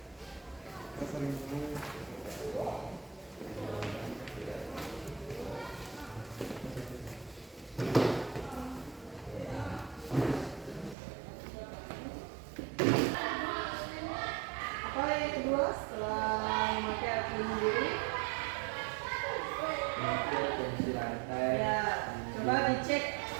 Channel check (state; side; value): drops out; left; at 11.0 s